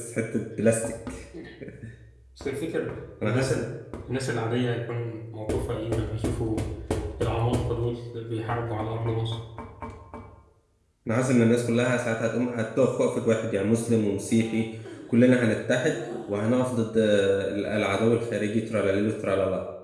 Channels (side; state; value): both; identical; correlation 1.00